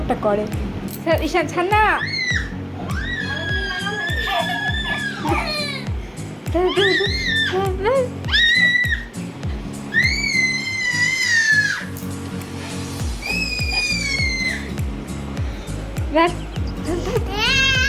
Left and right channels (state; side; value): identical; both; correlation 1.00